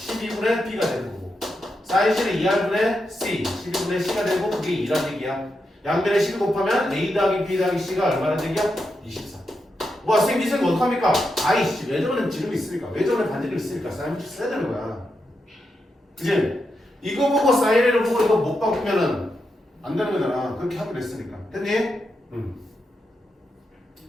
B가 되는 거고. 사인 C는 2R분의 C 12분의 C가 되고 그게 2란 얘기야. 양변에 12 곱하면 A 더하기 B 더하기 C가 얼마란 얘기야? 24. 뭐 선생님 이 생각 어떡합니까? 아이씨 외전에 지름이 있으니까 외전에 반지름이 있으니까 사인 써야 되는 거야. 그치? 이거 보고 사인을 보고 이거 못 바꾸면은 안 되는 거잖아. 그렇게 하기로 했으니까. 됐니?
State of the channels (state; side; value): normal; both; correlation 0.85